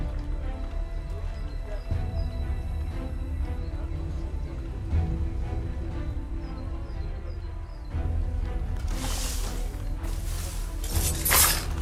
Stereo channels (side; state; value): both; identical; correlation 1.00